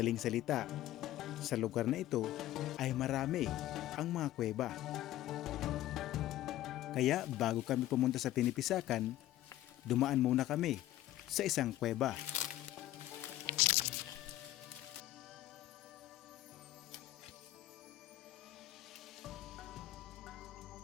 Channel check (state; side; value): quieter; right; 14.5 dB